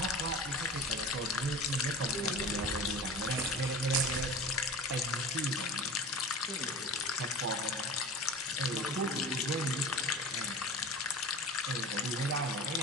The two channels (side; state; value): both; normal; correlation 0.35